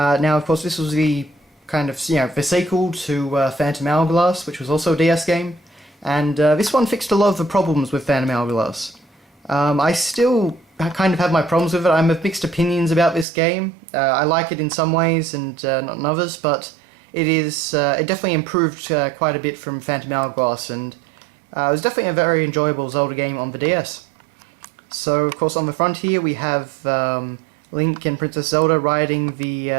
of course, this was the kind of, the sequel to Phantom Hourglass, which was also a DS game, and this one fixed a lot of the problems with Phantom Hourglass. I still kind of have my problems with it. I'm of mixed opinions about this game. I like it in some ways and not in others, but it definitely improved quite a bit from Phantom Hourglass, and it was definitely a very enjoyable Zelda game on the DS. So, of course, on the front here we have Link and Princess Zelda riding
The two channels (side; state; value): left; drops out; at 13.2 s